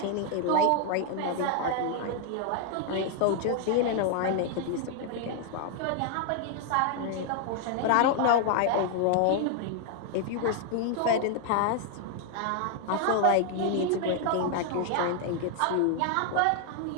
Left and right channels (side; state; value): both; different; correlation 0.00